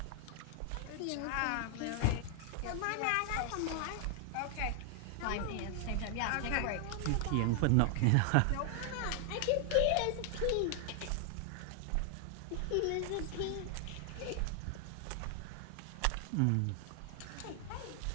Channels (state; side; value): different; both; correlation 0.00